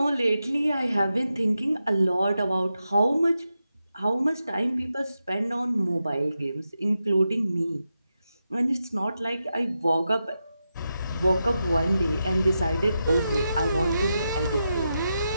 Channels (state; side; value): inverted; both; correlation -0.88